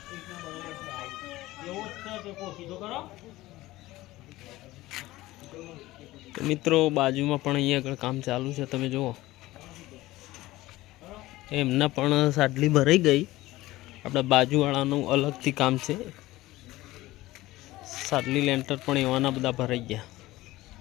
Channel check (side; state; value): right; quieter; 17.7 dB